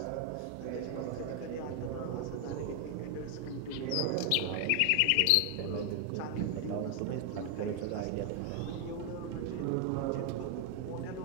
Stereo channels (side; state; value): both; different; correlation 0.01